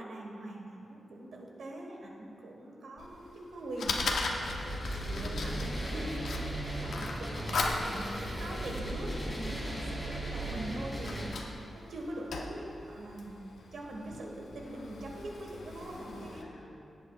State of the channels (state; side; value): normal; both; correlation 0.86